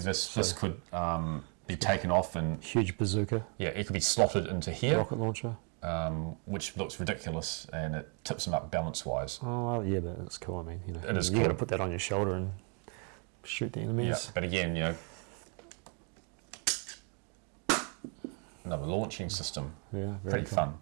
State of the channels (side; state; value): left; quieter; 38.6 dB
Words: this could be taken off and Huge bazooka. yeah, it could be slotted into here, Rocket launcher. which looks ridiculous, and it tips him up balance-wise. Oh well, yeah, but it's cool. I mean, It is you got to cool. put that on your shoulder and shoot the enemies. Yeah, but again, another launching system. Yeah, very Pretty cool. fun.